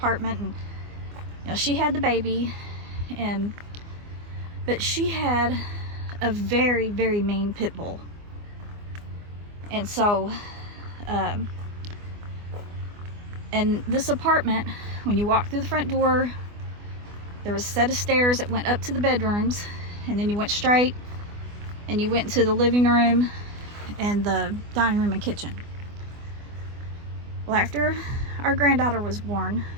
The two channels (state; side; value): late; left; 24 ms